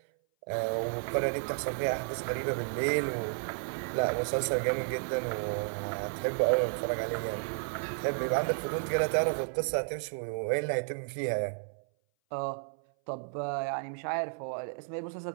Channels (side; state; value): left; silent; 56 dB below the other